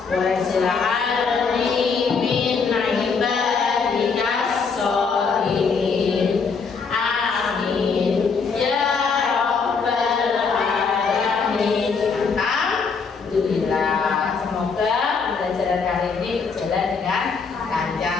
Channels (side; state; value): right; quieter; 5.3 dB